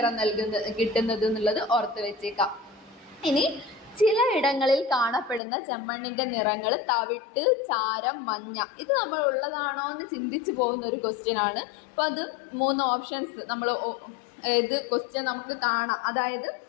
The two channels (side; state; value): right; drops out; at 5.4 s